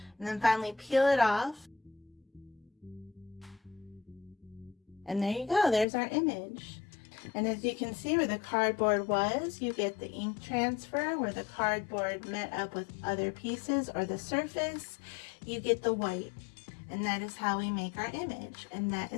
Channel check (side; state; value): right; drops out; at 5.9 s